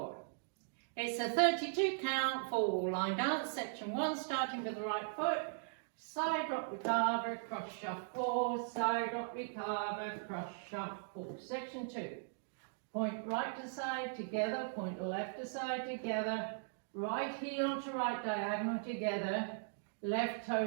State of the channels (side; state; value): left; silent; digital silence